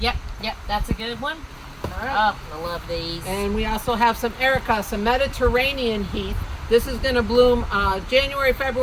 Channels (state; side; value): identical; both; correlation 1.00